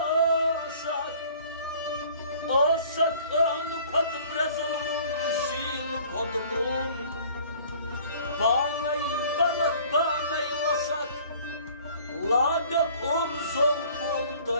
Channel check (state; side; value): inverted; both; correlation -0.52